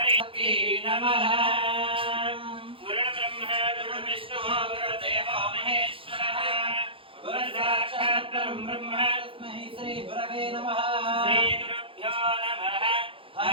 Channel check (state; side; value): late; left; 0.26 ms